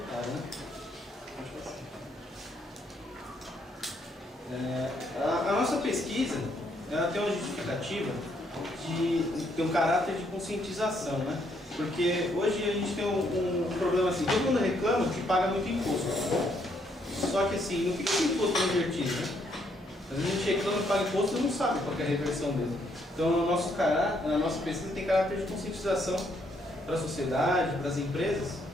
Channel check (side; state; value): both; normal; correlation 0.72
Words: né? A nossa pesquisa, ela tem uma justificativa de ter um caráter de conscientização, né? Porque hoje a gente tem um problema assim, todo mundo reclama que paga muito imposto. Só que assim, não fica com imposto invertido, né? Às vezes a gente reclama que paga imposto e não sabe qual é a reversão dele. Então a nossa pesquisa tem caráter de conscientização para a sociedade, para as empresas.